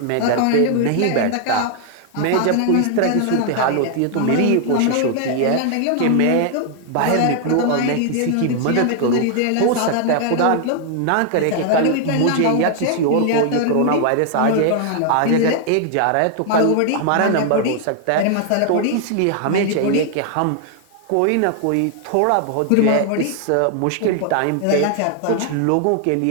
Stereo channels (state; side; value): different; both; correlation 0.00